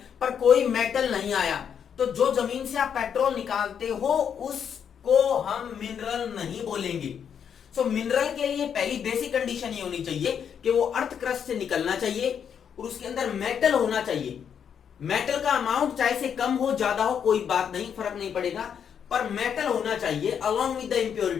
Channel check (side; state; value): right; quieter; 7.9 dB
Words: पर कोई मेटल नहीं आया, तो जो जमीन से आप पेट्रोल निकालते हो उसको हम मिनरल नहीं बोलेंगे। सो मिनरल के लिए पहली बेसिक कंडीशन ये होनी चाहिए कि वो अर्थ क्रस्ट से निकलना चाहिए और उसके अंदर मेटल होना चाहिए। मेटल का अमाउंट चाहे से कम हो ज्यादा हो कोई बात नहीं, फर्क नहीं पड़ेगा, पर मेटल होना चाहिए अलोंग विद द